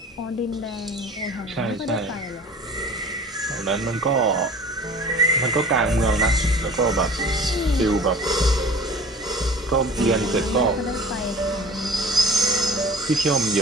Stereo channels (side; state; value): both; normal; correlation 0.43